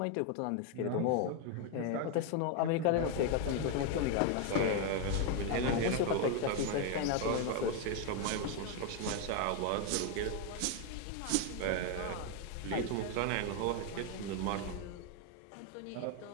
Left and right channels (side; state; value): both; different; correlation 0.01